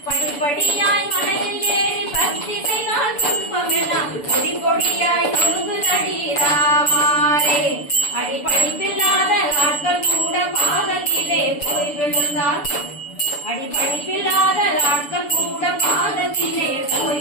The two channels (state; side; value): late; right; 6.9 ms